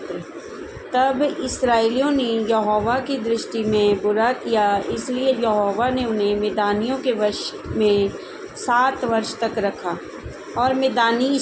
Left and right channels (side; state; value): both; identical; correlation 1.00